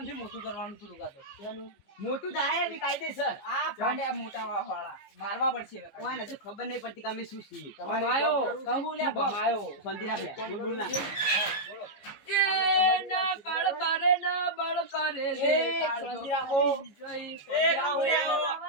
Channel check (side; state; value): right; late; 15 ms